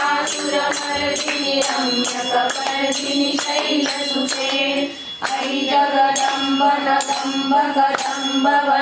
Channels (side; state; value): both; identical; correlation 1.00